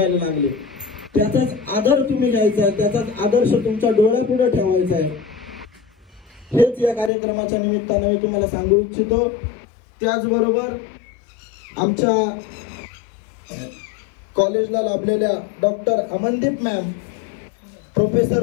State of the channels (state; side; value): drops out; right; at 7.1 s